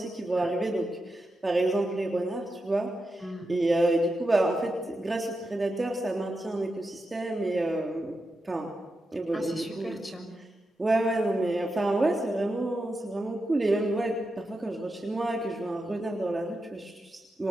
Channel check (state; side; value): normal; both; correlation 0.88